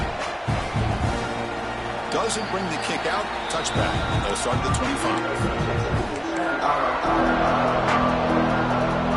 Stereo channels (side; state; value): both; identical; correlation 1.00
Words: Doesn't bring the kick out. Touchback. They'll start at the 25.